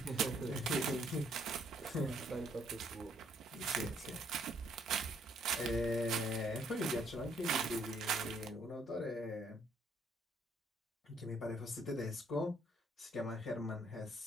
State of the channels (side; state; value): both; normal; correlation 0.67